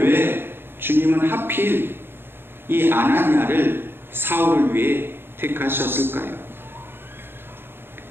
주님은 하필 이 아나니아를 사울을 위해 택하셨을까요?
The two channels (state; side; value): late; left; 0.10 ms